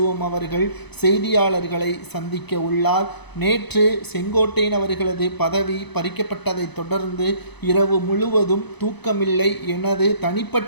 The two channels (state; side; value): late; right; 0.99 ms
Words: அவர்கள் செய்தியாளர்களை சந்திக்க உள்ளார். நேற்று செங்கோட்டையன் அவர்களது பதவி பறிக்கப்பட்டதை தொடர்ந்து இரவு முழுவதும் தூக்கமில்லை. எனது